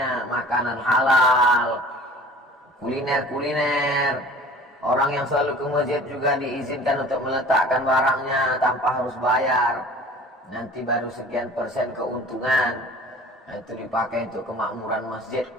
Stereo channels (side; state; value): both; normal; correlation 0.45